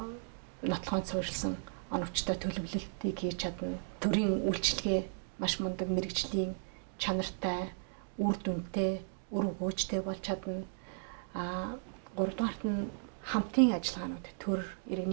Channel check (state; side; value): silent; left; digital silence